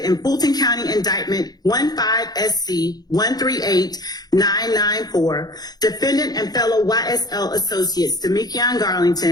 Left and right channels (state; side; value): late; right; 0.19 ms